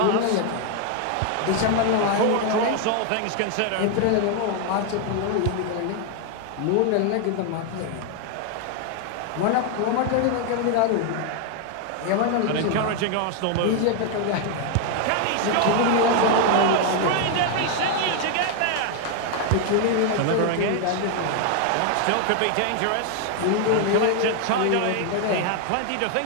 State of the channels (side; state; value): both; different; correlation 0.00